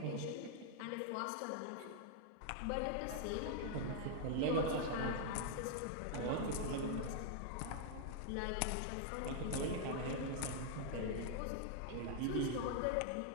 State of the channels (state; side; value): different; both; correlation 0.00